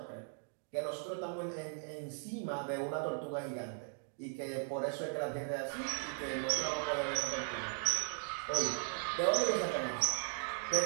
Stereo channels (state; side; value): silent; left; 53 dB below the other